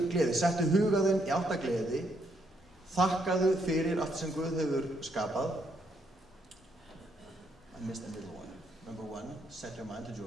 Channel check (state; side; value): normal; both; correlation 0.74